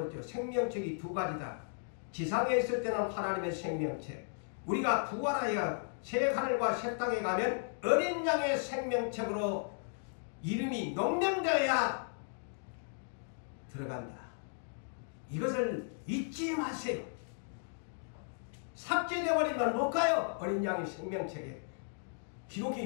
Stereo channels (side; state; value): right; silent; digital silence